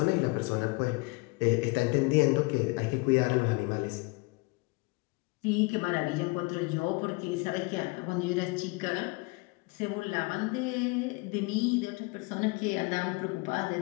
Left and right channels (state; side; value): quieter; right; 26.7 dB